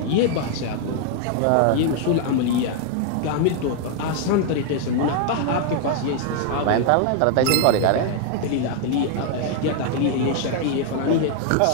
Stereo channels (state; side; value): different; both; correlation 0.00